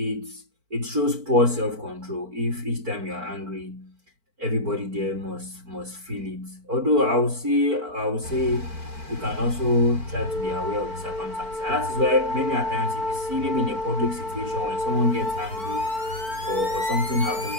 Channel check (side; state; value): left; late; 4.5 ms